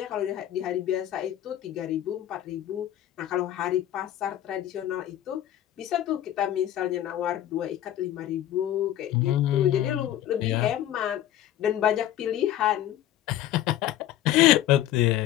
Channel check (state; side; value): quieter; right; 12.6 dB